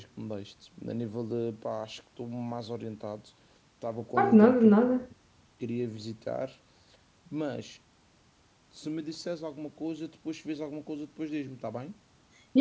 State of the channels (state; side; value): identical; both; correlation 1.00